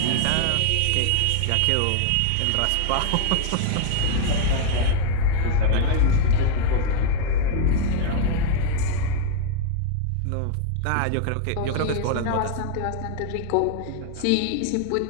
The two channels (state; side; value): different; both; correlation 0.00